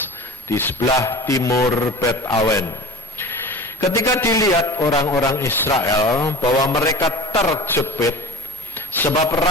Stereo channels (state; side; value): normal; both; correlation 0.35